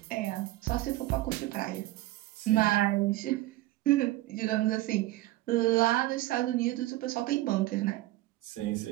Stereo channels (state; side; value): quieter; left; 17.3 dB